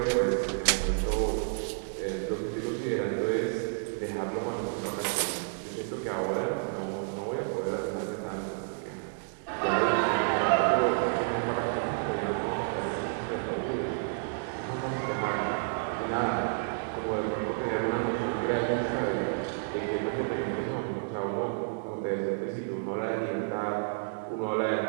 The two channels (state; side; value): silent; left; 58 dB below the other